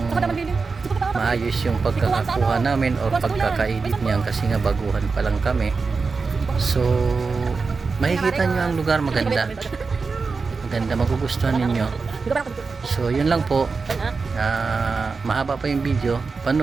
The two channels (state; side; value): quieter; left; 4.5 dB